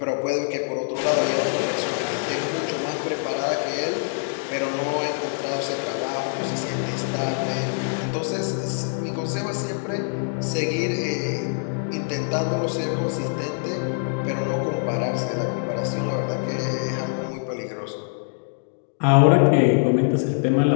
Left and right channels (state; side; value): silent; right; digital silence